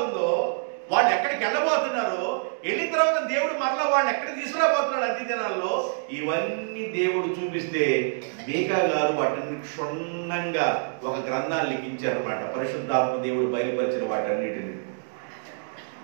వాళ్ళు ఎక్కడికి వెళ్ళబోతున్నారో, వెళ్ళిన తర్వాత దేవుడు మరలా వాళ్ళని ఎక్కడికి తీసుకురాబోతున్నాడు అంత్య దినాల్లో, ఇవన్నీ దేవుడు చూపిస్తే మీకా గారు వాటిని క్షుణ్ణంగా ఒక గ్రంథాన్ని లిఖించారన్నమాట. పరిశుద్ధాత్మ దేవుడు బయలుపరిచిన వాటన్నిటిని.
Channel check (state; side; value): silent; left; digital silence